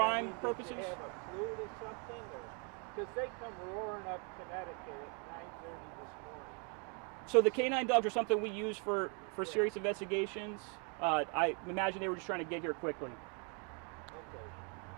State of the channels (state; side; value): quieter; left; 36.8 dB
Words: purposes. Did they have a flute or something? Because they come roaring up Connecticut at 9:30 this morning. So the canine dogs are something we use for serious investigations. I imagine they were just trying to get here quickly. Okay.